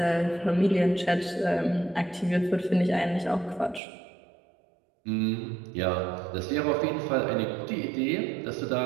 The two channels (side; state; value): left; drops out; at 3.8 s